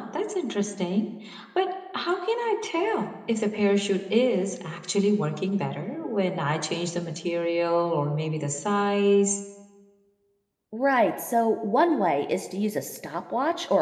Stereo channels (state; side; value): identical; both; correlation 1.00